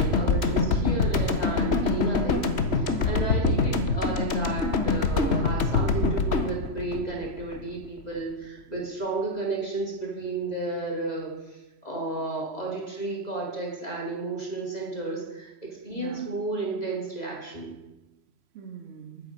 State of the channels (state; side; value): late; left; 3.0 ms